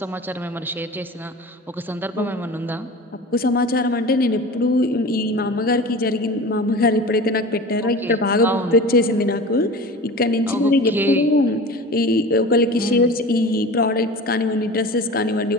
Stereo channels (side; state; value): both; normal; correlation 0.35